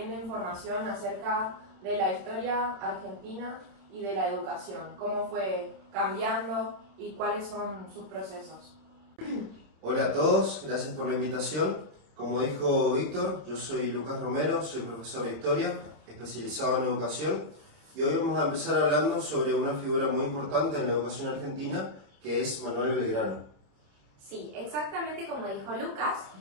información acerca de la historia argentina y de la educación, cómo fue cambiando y cuáles son sus procesos. Hola a todos, gracias por la invitación. Como dijo Víctor, yo soy Lucas Romero, soy profesor de historia, especializado en educación, y hoy vamos a empezar hablando sobre una figura muy importante en la educación argentina, que es Manuel Belgrano. Sí, exactamente como dijo Lucas,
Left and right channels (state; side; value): late; left; 27 ms